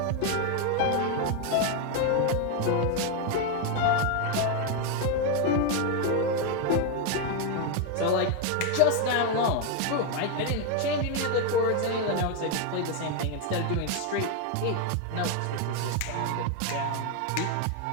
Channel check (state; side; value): different; both; correlation 0.01